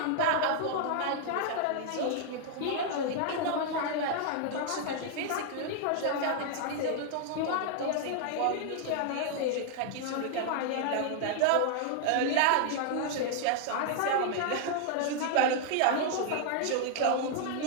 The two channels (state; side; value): different; both; correlation 0.00